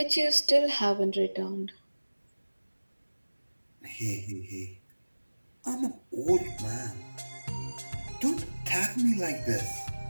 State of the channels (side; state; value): both; inverted; correlation -1.00